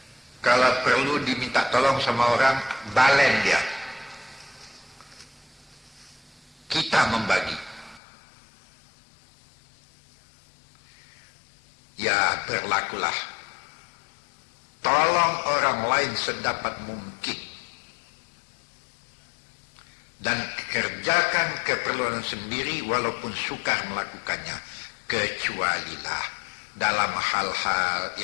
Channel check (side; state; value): right; drops out; at 8.0 s